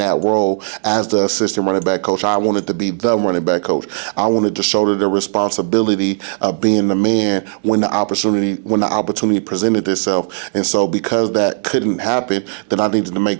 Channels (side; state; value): left; silent; 68 dB below the other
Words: role as the assistant running back coach. I wanted to be the running back coach. I wanted to shoulder the responsibility of being the man when the opportunity presented itself. And so because that couldn't happen, then I needed to